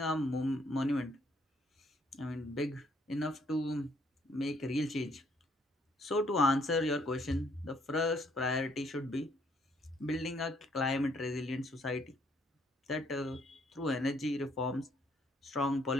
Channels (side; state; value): both; normal; correlation 0.67